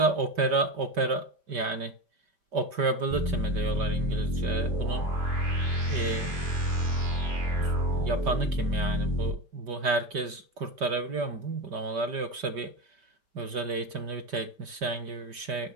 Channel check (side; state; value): left; late; 5.1 ms